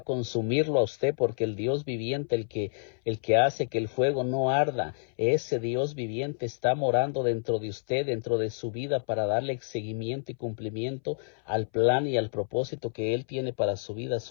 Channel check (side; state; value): right; silent; 59 dB below the other